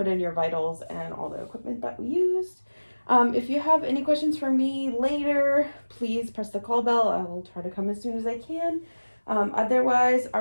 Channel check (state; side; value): inverted; both; correlation -1.00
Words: in your vitals and all the equipment that we used. If you have any questions for me later, please press the call bell. I will try to come as soon as I can. Otherwise,